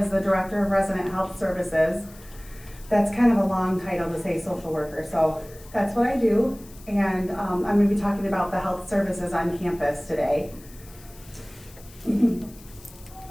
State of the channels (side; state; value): left; noise; hiss, 22 dB below the sound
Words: the Director of Resident Health Services. That's kind of a long title to say social worker, so that's what I do. And I'm going to be talking about the health services on campus today. So